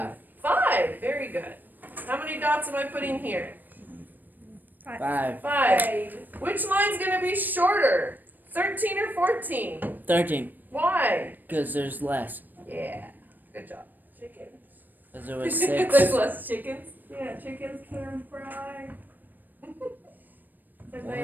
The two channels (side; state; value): left; late; 0.089 ms